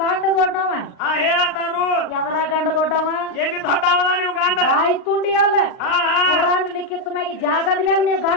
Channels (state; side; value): late; right; 39 ms